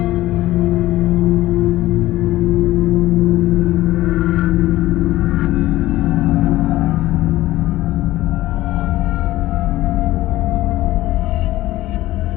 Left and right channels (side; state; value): right; quieter; 16.3 dB